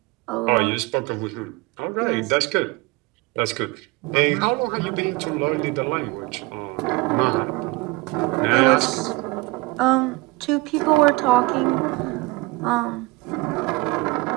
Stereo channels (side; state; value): left; quieter; 23.2 dB